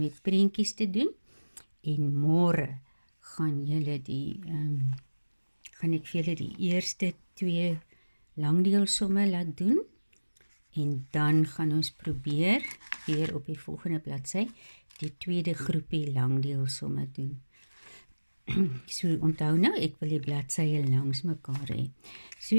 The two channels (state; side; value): inverted; both; correlation -1.00